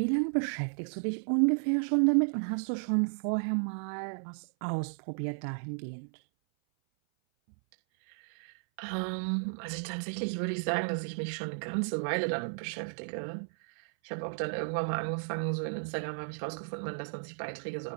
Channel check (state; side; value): silent; left; 56 dB below the other